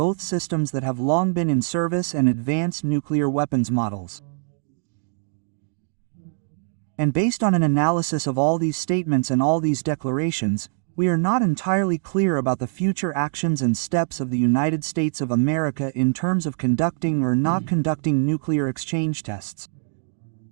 systems that have long been in service and advanced nuclear weapons models." And based on an analysis of all these statements and all these declarations, we are not entirely clear about the future actions and steps of the United States of America in terms of conducting or not conducting nuclear exchange tests.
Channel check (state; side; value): silent; left; digital silence